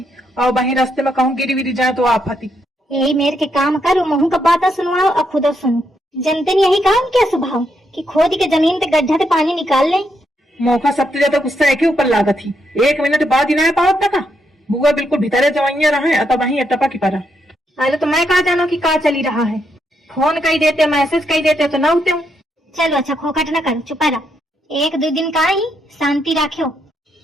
और वहीं रास्ते में कहूँ गिरी विरी जाए तो आफती। यही मेरे के काम करो, मुँह का बात सुनवाओ और खुद सुनो। जनते ने यही काम क्या स्वभाव कि खोद के जमीन पे गड्ढा से पानी निकाल ले। मौका सबसे ज्यादा गुस्सा एक ही ऊपर लागत थी। 1 मिनट बाद ही ना पावत तक बुआ बिल्कुल भीतरे जवाइया रहे तब वहीं अटपा की पड़ा। अरे तो मैं कहा जानो कि कहा चली रहा है, फोन कही देते मैसेज कही देते तो ना उठते हूँ। चलो अच्छा खोखट न करो, चुपा रहो। 1-2 दिन का ही शांति रखो।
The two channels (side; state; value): both; normal; correlation 0.78